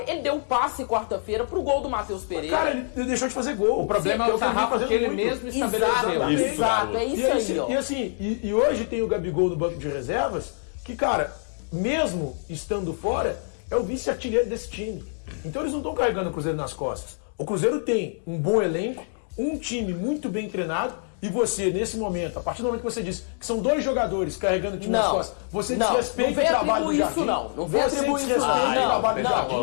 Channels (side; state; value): right; silent; digital silence